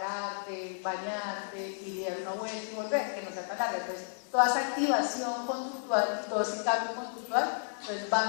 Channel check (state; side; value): silent; right; digital silence